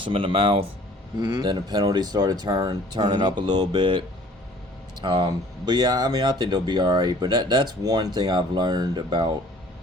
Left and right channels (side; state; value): both; normal; correlation 0.52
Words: them in the mouth. Then the penalties started turning up a little bit. But yeah, I mean, I think they'll be all right. But that's one thing I've learned about